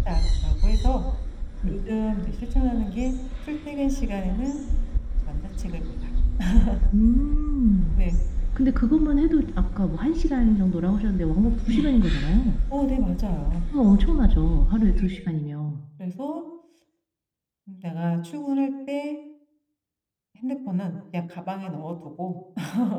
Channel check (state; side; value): identical; both; correlation 1.00